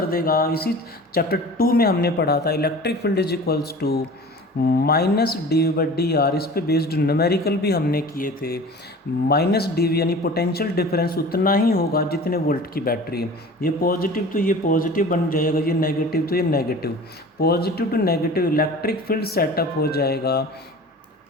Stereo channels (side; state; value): both; normal; correlation 0.40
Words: देगा, इसी चैप्टर 2 में हमने पढ़ा था। Electric field is equals to -dV/dr, इस पे बेस्ड न्यूमेरिकल भी हमने किए थे। -dV यानी पोटेंशियल डिफरेंस उतना ही होगा जितने वोल्ट की बैटरी है। ये पॉजिटिव तो ये पॉजिटिव बन जाएगा, ये नेगेटिव तो ये negative, positive to negative electric field setup हो जाएगा।